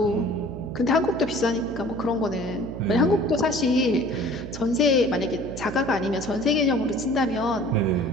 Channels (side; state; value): right; noise; hum, 10 dB below the sound